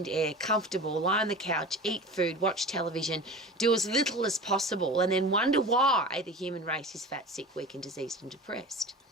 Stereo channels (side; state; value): both; normal; correlation 0.35